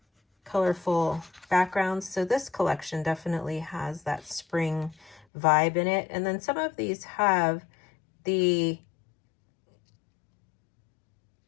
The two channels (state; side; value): drops out; right; at 5.2 s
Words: colorful backgrounds. So this collection definitely has that spring vibe in it. And then some of these have the